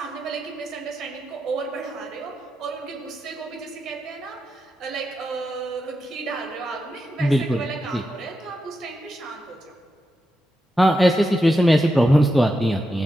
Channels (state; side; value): normal; both; correlation 0.87